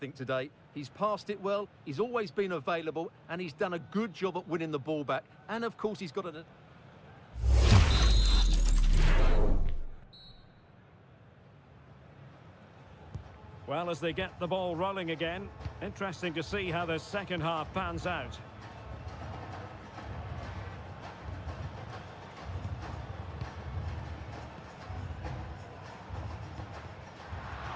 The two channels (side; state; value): both; identical; correlation 1.00